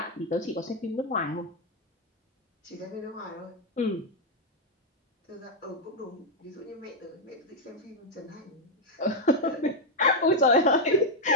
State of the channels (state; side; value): normal; both; correlation 0.00